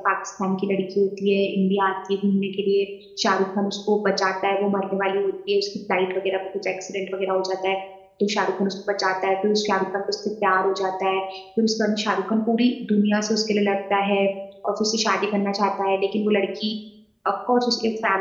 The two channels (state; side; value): identical; both; correlation 1.00